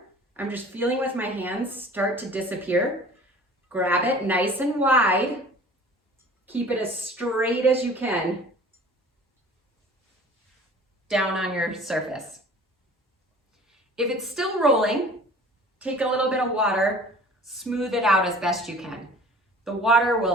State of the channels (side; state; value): both; normal; correlation 0.46